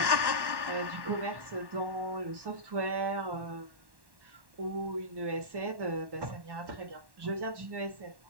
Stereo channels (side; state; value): left; late; 1.1 ms